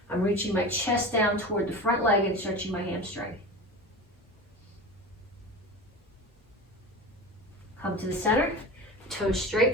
I'm reaching my chest down toward the front leg and stretching my hamstring. Come to the center, toes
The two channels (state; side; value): normal; both; correlation 0.30